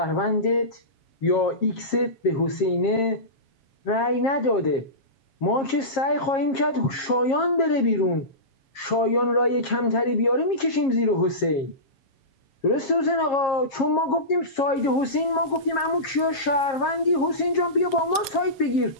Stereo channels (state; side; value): late; right; 7.4 ms